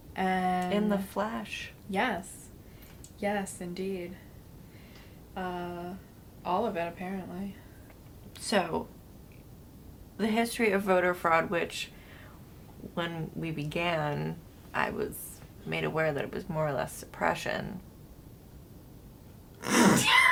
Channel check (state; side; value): identical; both; correlation 1.00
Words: And In the flesh. Yes. Yes, indeed. All of it, apparently. So, the history of voter fraud, which when we began, I was made aware that it was more or less suppression.